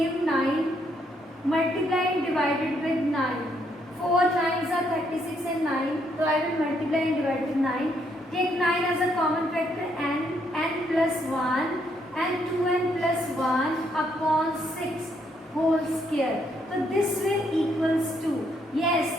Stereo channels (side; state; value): both; normal; correlation 0.73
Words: 9. Multiply and divided with 9. 4 times are 36 and 9. So I will multiply and divide with 9. Take 9 as a common factor, n plus 1 and 2n plus 1 upon 6 whole square. So this will equals to,